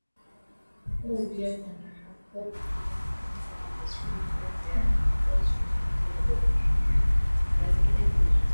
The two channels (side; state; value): both; inverted; correlation -1.00